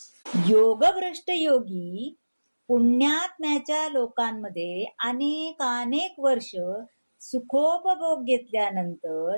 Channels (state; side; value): inverted; both; correlation -1.00